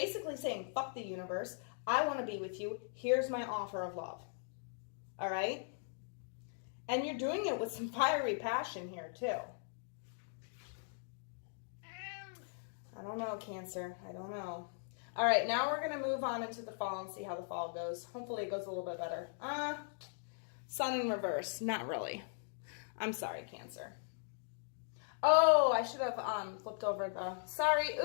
saying, fuck the universe. I want to be with you. Here's my offer of love. All right? And you're doing it with some fiery passion here, too. I don't know, Cancer. I don't know. All right, now we're going to move on into the fall and see how the fall goes. Hopefully it goes a little bit better. Sun in reverse. Not really. I'm sorry, Cancer. Oh, I should have flipped over the... Sorry.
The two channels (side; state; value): right; silent; digital silence